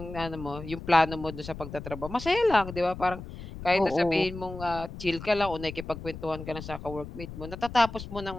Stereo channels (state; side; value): noise; left; rumble, 11 dB below the sound